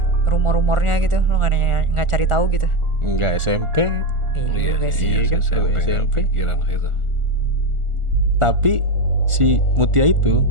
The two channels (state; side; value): late; left; 1.4 ms